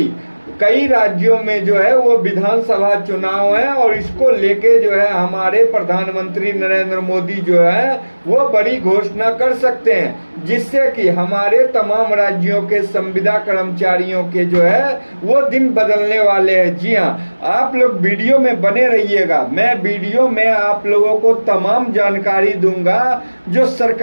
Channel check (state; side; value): inverted; both; correlation -1.00